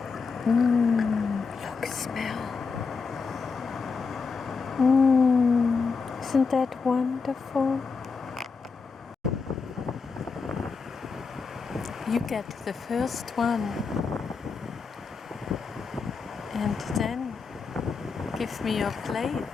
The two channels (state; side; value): quieter; right; 4.9 dB